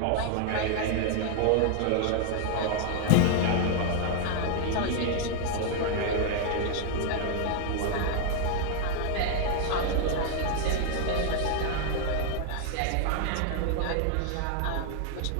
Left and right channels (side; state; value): both; different; correlation 0.00